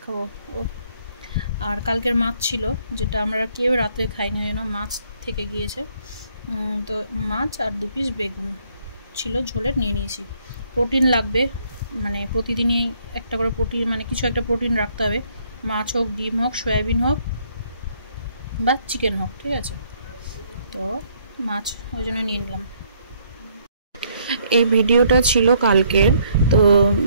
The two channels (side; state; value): both; inverted; correlation -0.67